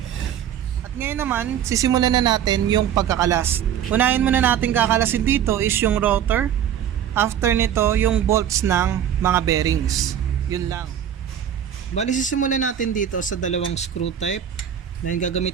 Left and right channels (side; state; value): left; quieter; 9.6 dB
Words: naman, sisimulan na natin yung pagkakalas. Unahin muna natin kakalasin dito is yung rotor. After nito, yung bolts ng mga bearings. Yun lang. Bali, sisimulan natin dito sa dalawang screw type. Dahil